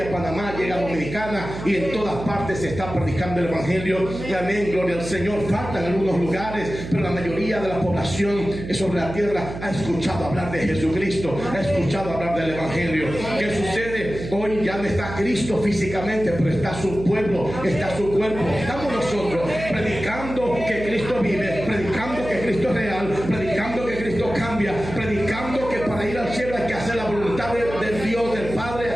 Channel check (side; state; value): right; noise; hum, 9 dB below the sound